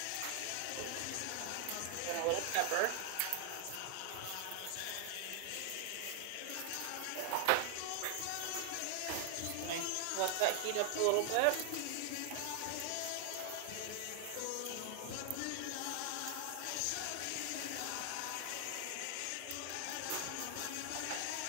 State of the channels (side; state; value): both; different; correlation 0.00